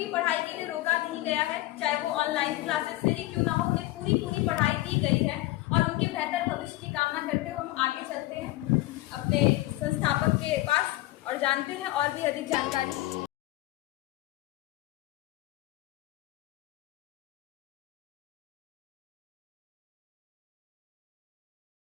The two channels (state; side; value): quieter; right; 17.9 dB